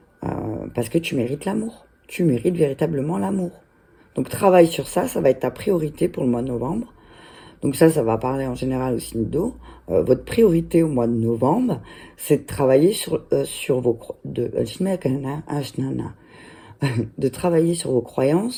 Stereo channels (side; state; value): both; identical; correlation 1.00